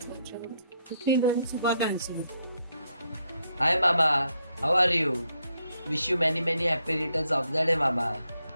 పుట్టినరోజు శుభాకాంక్షలు. Hi Baba, How are you? Wish you many happy returns of the day, Mama.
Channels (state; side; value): inverted; both; correlation -0.77